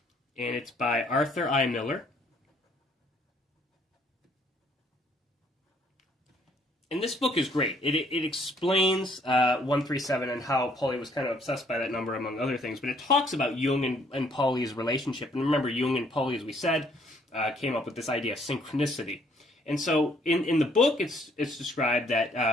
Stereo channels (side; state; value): both; normal; correlation 0.64